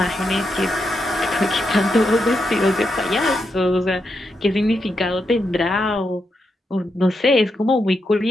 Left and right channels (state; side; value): normal; both; correlation 0.84